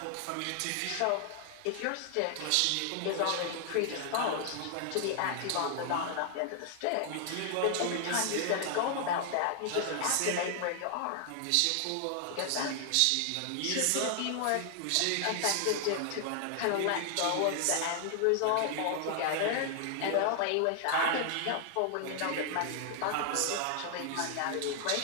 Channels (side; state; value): both; different; correlation 0.00